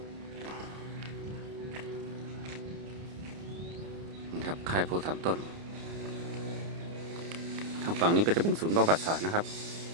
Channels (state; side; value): late; left; 30 ms